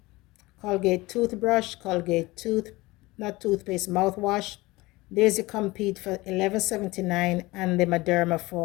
Colgate toothbrush, Colgate not toothpaste, mouthwash. There's the Compeed for $11.79 and the Mederma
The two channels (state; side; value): quieter; right; 21.0 dB